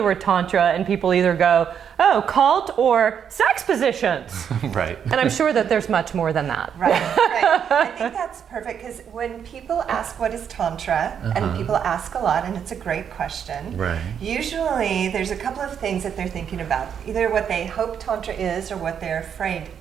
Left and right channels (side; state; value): left; quieter; 8.0 dB